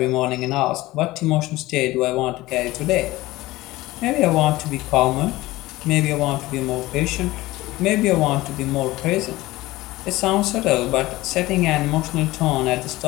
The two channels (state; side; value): quieter; right; 18.5 dB